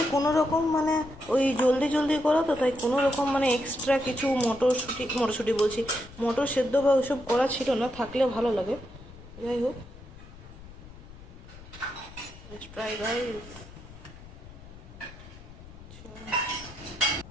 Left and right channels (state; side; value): noise; left; rumble, 18 dB below the sound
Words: কোনো রকম মানে ওই জলদি জলদি করা তো, তাই কোনো রকম মানে এক্সট্রা কিছু মটরশুঁটি বলছি, মটর সেদ্ধ বা ওইসব করা ছিল না, থাকলে ভালো লাগে। যাই হোক, ট্রাই গাইস।